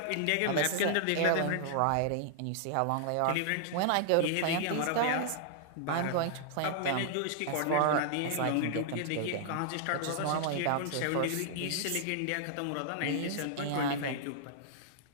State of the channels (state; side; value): different; both; correlation -0.01